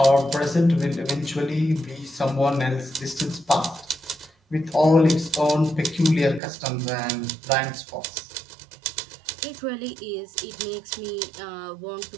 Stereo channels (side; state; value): left; drops out; at 6.4 s